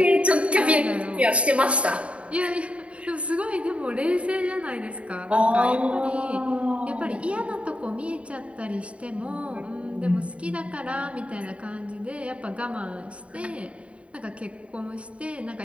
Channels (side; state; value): left; late; 0.062 ms